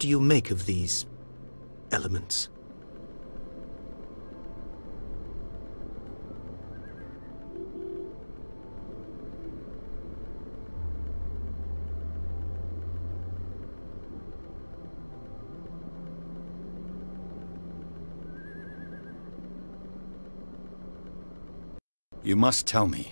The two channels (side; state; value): both; inverted; correlation -1.00